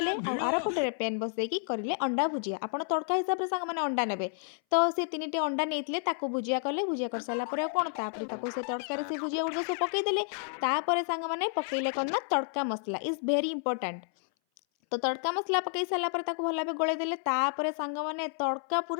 आ आर पटरे पेन बसैकी करिले अंडा भुजिया। आपण तड़का हिसाब रे संग माने अंडा नेबे। तो से तीनिटी अंडा नेइथिले ताकू भुजिया कले। भुजिया कर सारा पर कोन तापर ताकू से तड़का रे से भुजिया उड़ सब पकई देले। तापर संग माने पकईले कोन ना तड़का मसला इज वेरी इंपोर्टेंट। तो तड़का मसला पकई सारा पर ताकू भला गोळे देले। तापर सांग माने तड़का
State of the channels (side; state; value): right; silent; 57 dB below the other